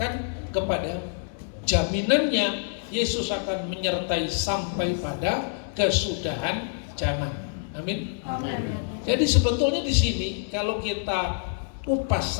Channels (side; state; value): right; silent; digital silence